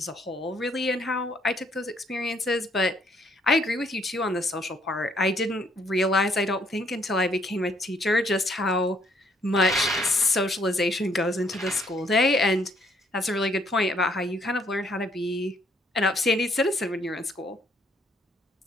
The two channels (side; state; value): both; normal; correlation 0.67